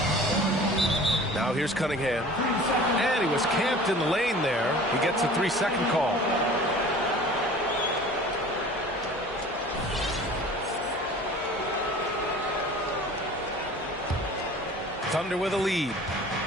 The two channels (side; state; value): both; normal; correlation 0.43